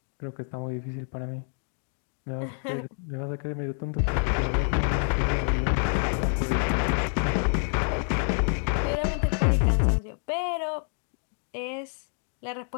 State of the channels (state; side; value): silent; right; 56 dB below the other